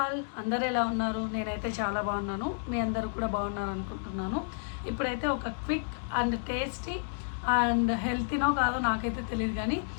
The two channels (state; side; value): silent; right; digital silence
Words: అందరు ఎలా ఉన్నారు? నేనైతే చాలా బాగున్నాను. మీ అందరూ కూడా బాగున్నారు అనుకుంటున్నాను. ఇప్పుడైతే ఒక క్విక్ అండ్ టేస్టీ అండ్ హెల్తీనో కాదో నాకైతే తెలియదు, కానీ